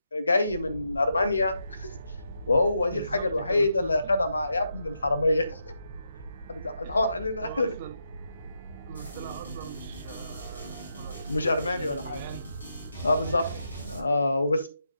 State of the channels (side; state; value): both; inverted; correlation -0.83